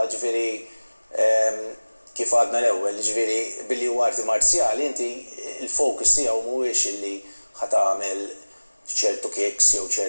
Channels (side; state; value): both; inverted; correlation -1.00